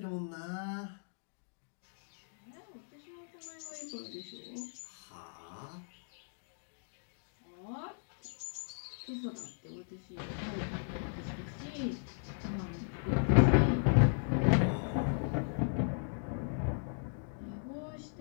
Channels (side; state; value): right; silent; digital silence